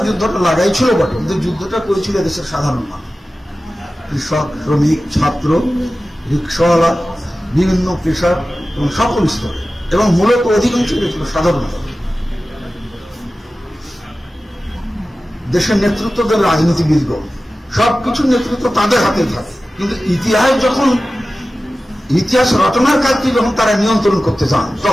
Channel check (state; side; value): normal; both; correlation 0.95